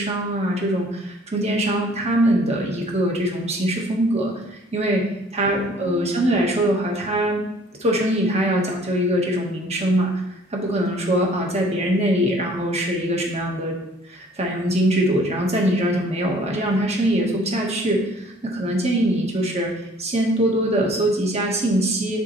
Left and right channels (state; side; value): normal; both; correlation 0.55